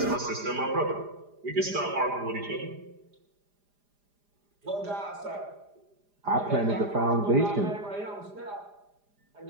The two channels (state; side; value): late; left; 4.9 ms